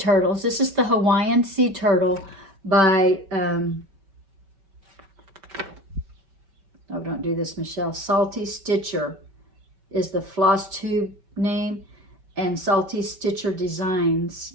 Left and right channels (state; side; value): late; left; 5.2 ms